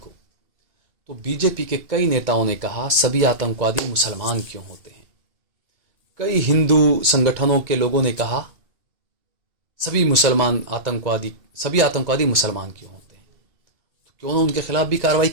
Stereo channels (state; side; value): late; left; 1.9 ms